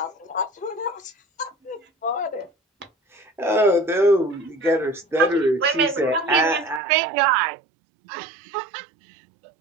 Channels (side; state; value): left; drops out; at 6.8 s